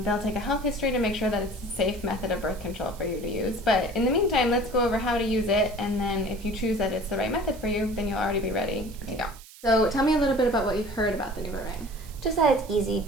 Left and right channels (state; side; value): noise; right; hiss, 20 dB below the sound